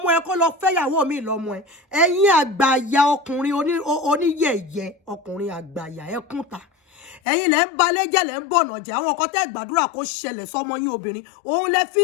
ẹ kó lọ fẹ́yàwó mi lọ́mọ ẹ ẹ̀yin àgbàyà ọkùnrin oníyẹ̀yẹ ọkùnrin àgbàyà ẹkúnta ẹ̀yin lẹ ń balẹ̀jẹ́ lẹ ń bọ̀nà jẹ́ àwọn ọkọ tẹ́ gbàdúrà kó ṣẹlẹ̀ sọmọ yín obìnrin òun lẹ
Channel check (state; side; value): drops out; right; at 7.2 s